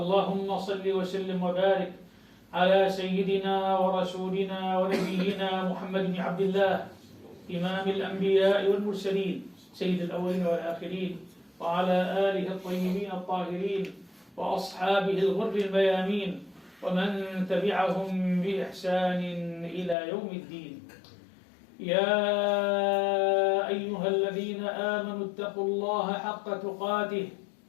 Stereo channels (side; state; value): right; drops out; at 20.0 s